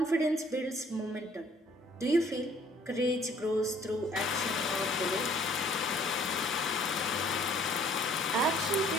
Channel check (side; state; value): both; normal; correlation 0.58